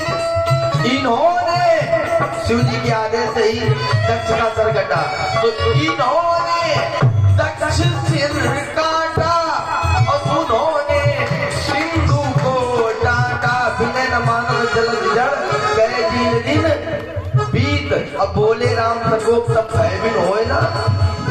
इन्होंने शिव जी के आदेश से ही दक्ष का सर कटा, तो इन्होंने दक्ष सिर काटा और उन्होंने सिंधु को डांटा। बिना न मानव जल जड़ गए दिन दिन बीत। अब बोले राम सकोप सब भयभीन होए ना।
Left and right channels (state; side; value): identical; both; correlation 1.00